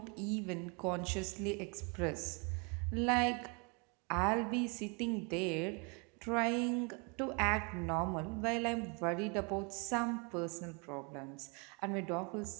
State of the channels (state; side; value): quieter; left; 32.8 dB